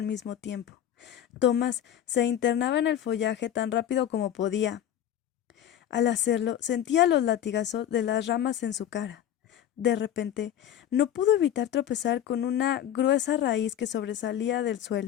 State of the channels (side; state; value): right; quieter; 10.7 dB